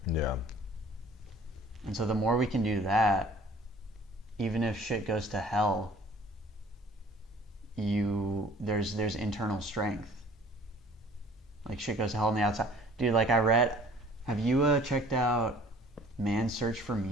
Yeah. And so the more we can do that, even if shit goes to hell, there's internal strength. Like shit goes to hell on the outside. Dude, like have you checked out Man's Search for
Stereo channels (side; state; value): both; normal; correlation 0.51